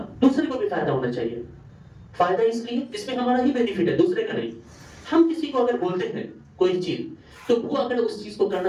دوسرے کو بھی فائدہ ہونا چاہیے. فائدہ اس لیے اس میں ہمارا ہی بینیفٹ ہے، دوسرے کا نہیں. ہم کسی کو اگر بولتے ہیں کوئی چیز تو وہ اگر اس چیز کو کرنا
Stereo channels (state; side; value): identical; both; correlation 1.00